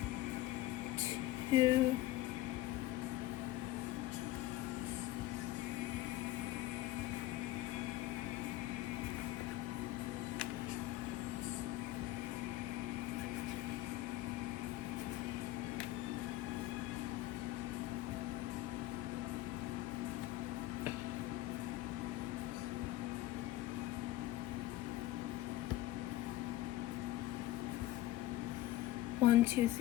two. One, 2,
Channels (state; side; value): quieter; right; 15.2 dB